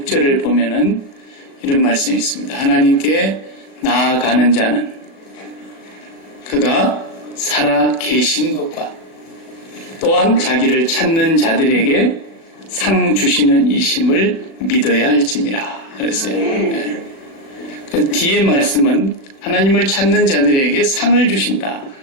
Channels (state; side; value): late; right; 37 ms